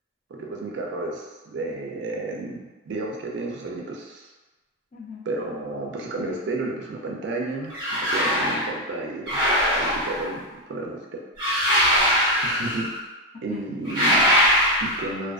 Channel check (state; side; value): normal; both; correlation 0.07